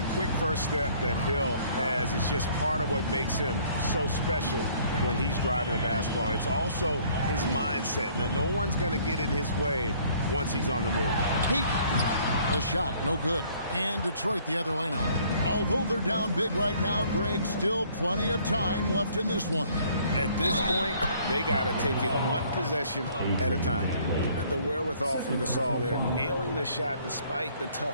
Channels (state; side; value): inverted; both; correlation -0.59